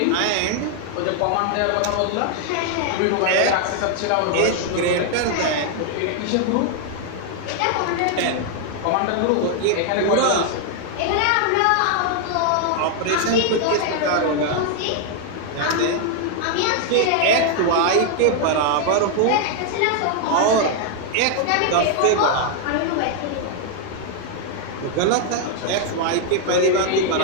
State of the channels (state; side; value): different; both; correlation 0.00